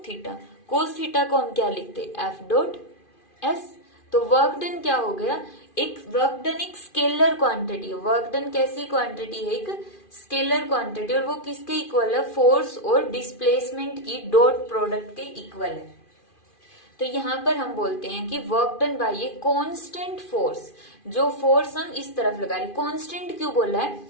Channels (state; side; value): late; right; 2.5 ms